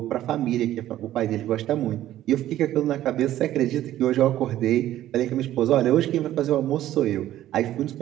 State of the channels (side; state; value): left; quieter; 13.3 dB